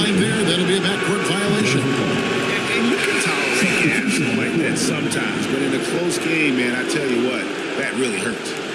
there. That'll be a backcourt violation. And you can tolerate gaps like that sometimes. But in a close game, man, I tell you what, that really hurts.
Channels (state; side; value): identical; both; correlation 1.00